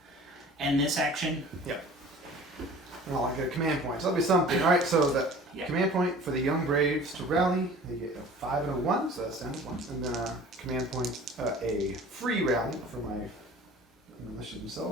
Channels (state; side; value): normal; both; correlation 0.45